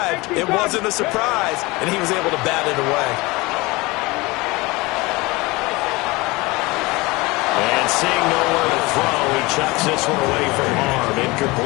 it wasn't a surprise, and he was able to bat it away. And seeing nowhere to throw, he chucks this one away from harm.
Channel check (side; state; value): right; quieter; 23.1 dB